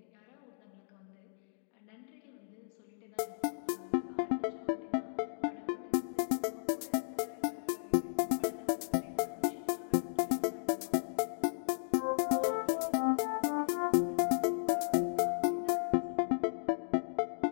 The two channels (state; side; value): silent; right; digital silence